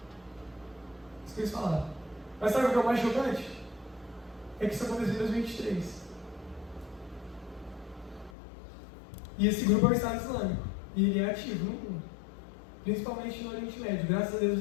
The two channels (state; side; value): drops out; right; at 8.3 s